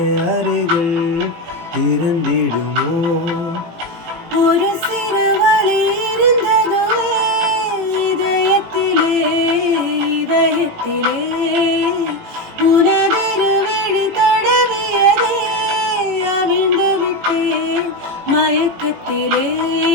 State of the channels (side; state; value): left; late; 18 ms